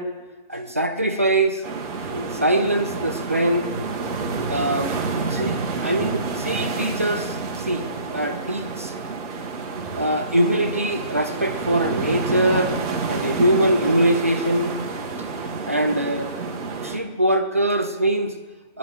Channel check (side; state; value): both; inverted; correlation -0.56